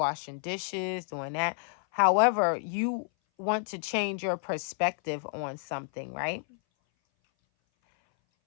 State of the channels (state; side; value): silent; right; 57 dB below the other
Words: dishes, doing that. However, you want to change your perspective on something, right?